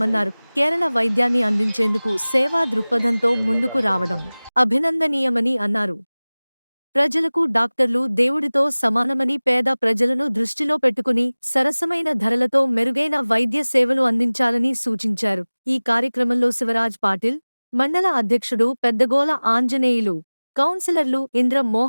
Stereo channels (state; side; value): inverted; both; correlation -1.00